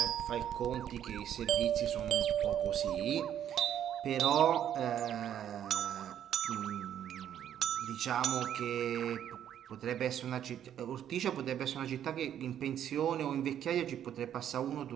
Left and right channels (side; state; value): left; quieter; 10.1 dB